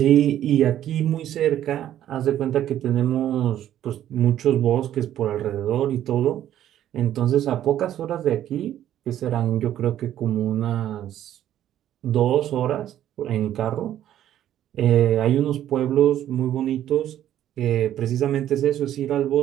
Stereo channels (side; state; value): left; quieter; 11.7 dB